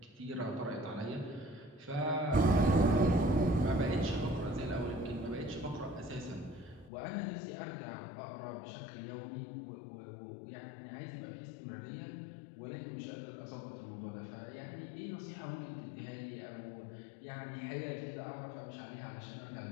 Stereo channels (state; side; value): drops out; right; at 6.9 s